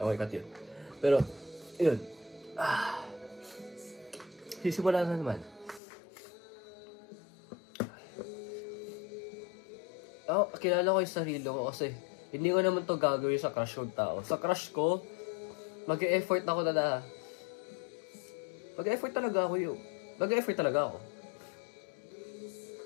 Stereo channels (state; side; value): drops out; right; at 5.8 s